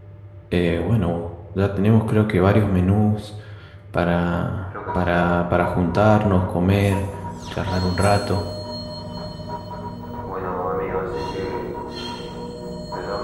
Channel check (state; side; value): identical; both; correlation 1.00